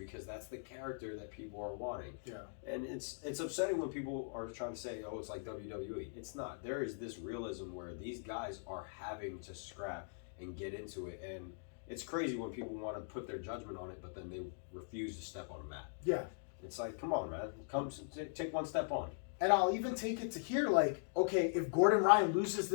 that's the character that people are wanting. Yeah. And it's upsetting when people are trying to say, oh, it's like WWE. It's not. There is this realism where these guys are having to scrap and get into it. And it's crazy when people want to put their judgment on it, but then they refuse to step on a mat. Yeah. It's like, come on, man. Come take one step on. And I'll even take it to here, like, okay, if Gordon Ryan loses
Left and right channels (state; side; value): silent; right; digital silence